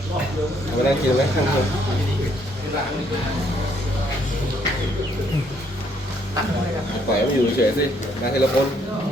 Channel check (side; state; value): both; normal; correlation 0.68